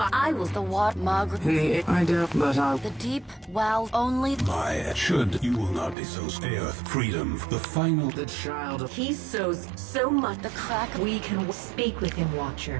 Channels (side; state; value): left; drops out; at 6.0 s